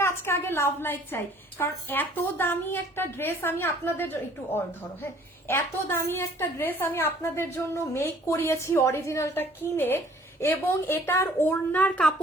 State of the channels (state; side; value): normal; both; correlation 0.56